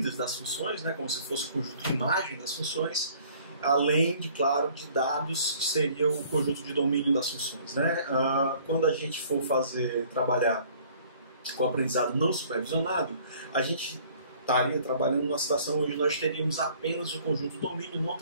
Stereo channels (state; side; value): inverted; both; correlation -0.55